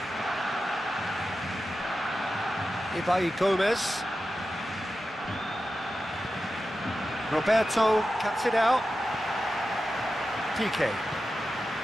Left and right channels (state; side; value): normal; both; correlation 0.92